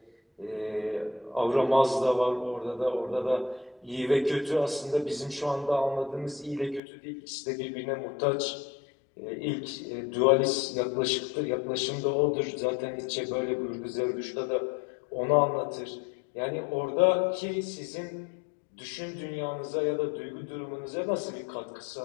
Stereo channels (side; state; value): right; drops out; at 6.8 s